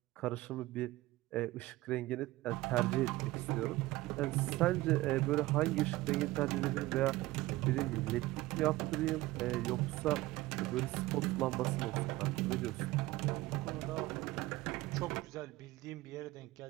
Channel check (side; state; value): left; quieter; 18.4 dB